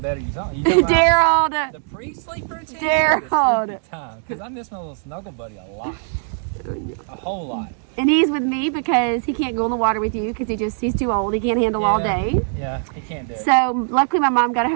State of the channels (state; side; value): silent; left; 65 dB below the other